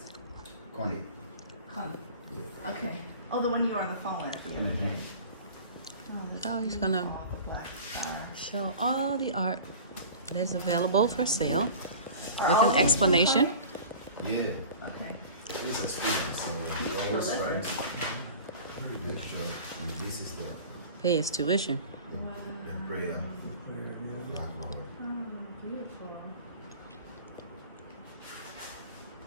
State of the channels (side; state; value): both; inverted; correlation -0.39